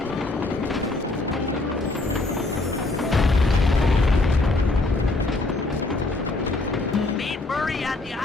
Meet Murray at the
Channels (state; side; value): quieter; right; 3.1 dB